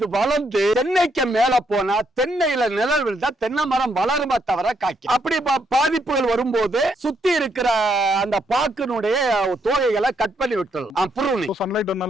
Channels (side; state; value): both; normal; correlation 0.75